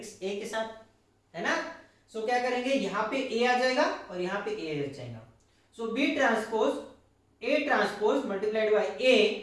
ए के साथ, है ना? सो क्या करेंगे? यहां पे ए आ जाएगा और यहां पे ए आ जाएगा। So B transpose A transpose multiplied by A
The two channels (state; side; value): identical; both; correlation 1.00